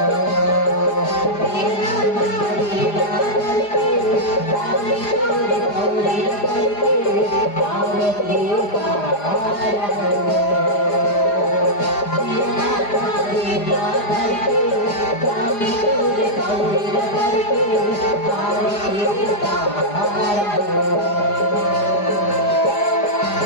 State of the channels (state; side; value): late; right; 4.9 ms